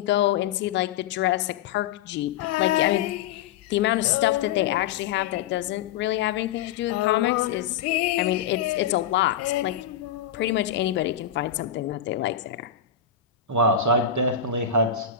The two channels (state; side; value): quieter; right; 8.2 dB